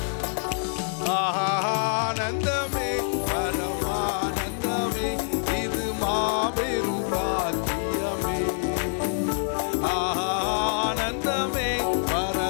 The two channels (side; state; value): right; silent; digital silence